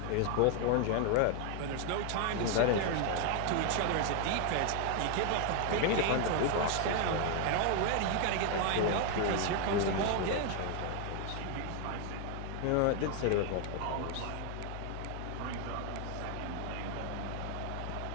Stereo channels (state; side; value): different; both; correlation 0.01